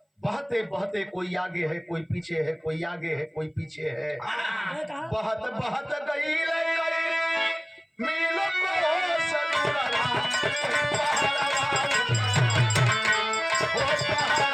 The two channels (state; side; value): identical; both; correlation 1.00